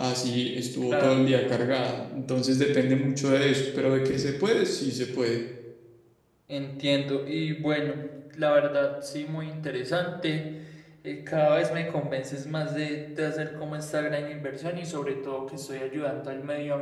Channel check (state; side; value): identical; both; correlation 1.00